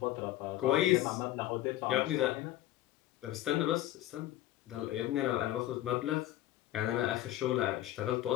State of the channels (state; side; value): quieter; right; 14.4 dB